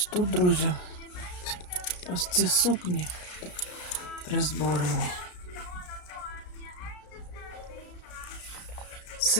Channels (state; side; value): late; right; 34 ms